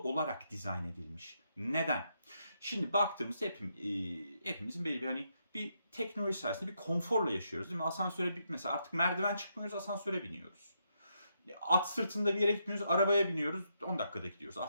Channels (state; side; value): inverted; both; correlation -0.80